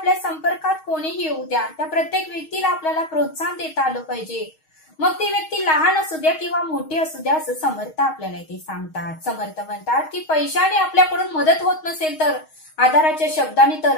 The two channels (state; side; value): late; right; 6.4 ms